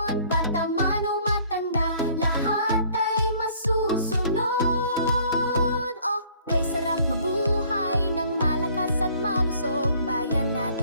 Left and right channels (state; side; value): inverted; both; correlation -0.57